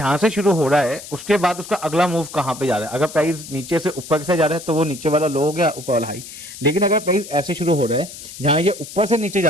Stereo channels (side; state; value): left; noise; hiss, 14 dB below the sound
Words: से शुरू हो रहा है उसके बाद उसका अगला मूव कहाँ पे जा रहा है। अगर प्राइस नीचे से ऊपर से जा रहा है तो वो नीचे वाला लो हो गया, ऊपर वाला हाई। लेकिन अगर प्राइस ऐसे शुरू हो रहा है जहाँ ये ऊपर से नीचे जा